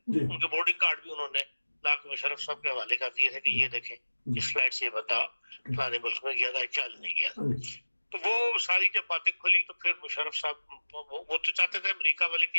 जी उनके बोर्डिंग कार्ड भी उन्होंने लाके मुशर्रफ साहब के हवाले कर दिए थे कि ये देखें इस फ्लाइट से ये बता फलाने मुल्क में गया था, क्या नहीं गया था। तो वो सारी जब बातें खुली तो फिर मुशर्रफ साहब वो तो चाहते थे अमेरिका वाले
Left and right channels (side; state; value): both; inverted; correlation -1.00